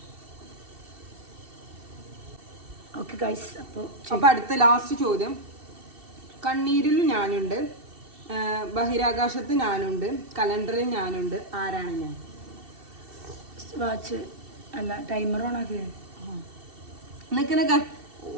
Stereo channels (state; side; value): late; left; 2.7 ms